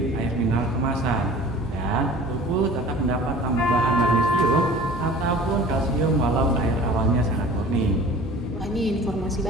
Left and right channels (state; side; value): normal; both; correlation 0.44